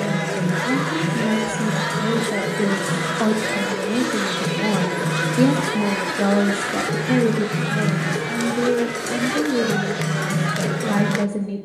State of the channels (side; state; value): both; identical; correlation 1.00